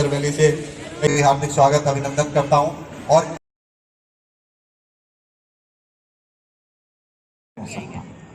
वैली से हार्दिक स्वागत अभिनंदन करता हूं। और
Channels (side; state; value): both; identical; correlation 1.00